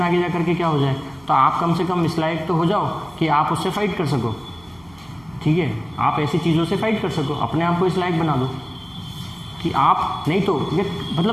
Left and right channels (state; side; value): noise; right; hum, 26 dB below the sound